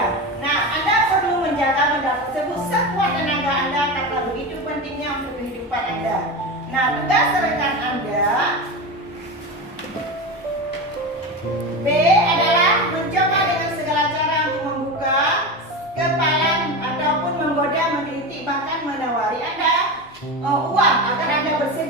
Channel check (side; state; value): both; normal; correlation 0.22